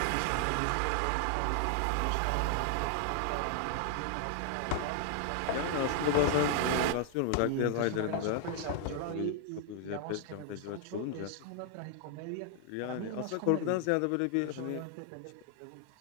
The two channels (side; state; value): both; different; correlation 0.00